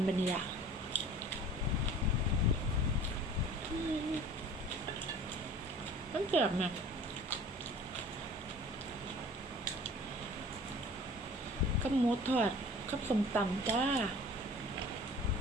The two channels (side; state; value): both; normal; correlation 0.45